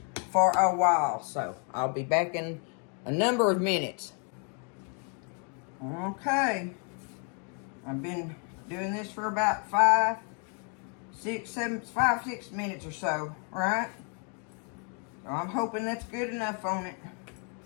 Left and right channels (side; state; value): right; quieter; 39.8 dB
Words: for a while. So I'll be back in a number of minutes. Okay, I've been doing this for about 6 minutes or so, right? So I'm hoping that's good enough on it.